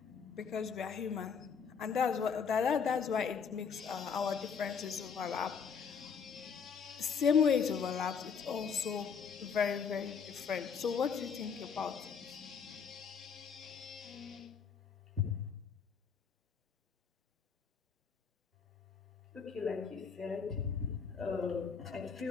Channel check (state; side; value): quieter; right; 6.4 dB